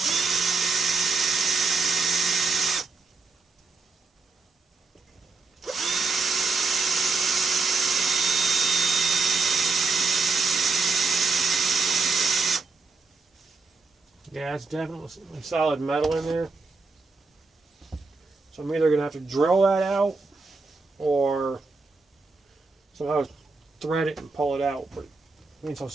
Yeah, it's definitely solid metal in there. So I'm either going to have to drill that out or somehow thread it and pull it out. But being so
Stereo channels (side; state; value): left; quieter; 4.0 dB